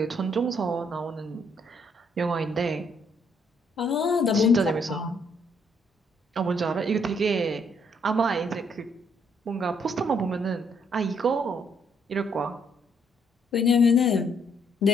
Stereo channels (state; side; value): normal; both; correlation 0.70